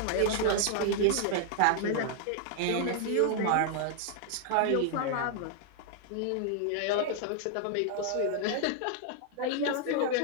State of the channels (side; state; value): both; different; correlation -0.01